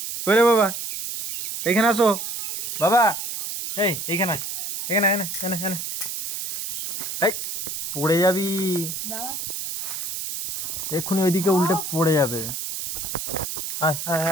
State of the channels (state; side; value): noise; right; hiss, 4 dB below the sound